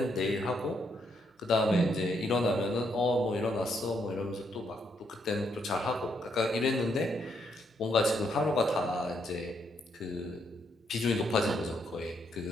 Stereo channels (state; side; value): normal; both; correlation 0.75